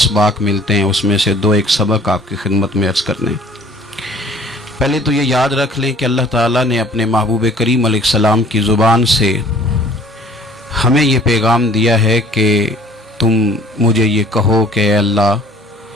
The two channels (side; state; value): both; normal; correlation 0.52